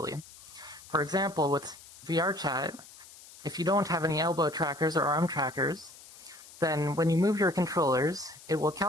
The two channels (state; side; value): noise; left; hiss, 19 dB below the sound